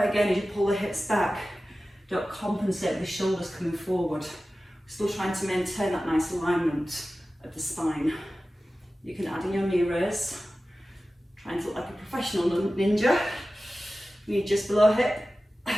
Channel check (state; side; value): normal; both; correlation 0.95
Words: again, as you pull the hips back, don't compensate with the shoulders coming forward. We're still trying to maintain that nice alignment of the spine. You can add in your knee raise. Trying to look like a professional ninja. Knee just below hip.